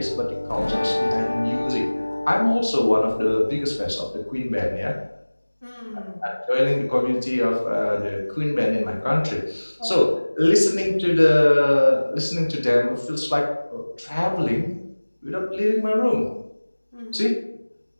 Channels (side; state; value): both; inverted; correlation -1.00